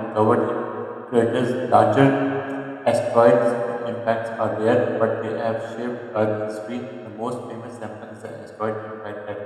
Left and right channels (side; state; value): both; identical; correlation 1.00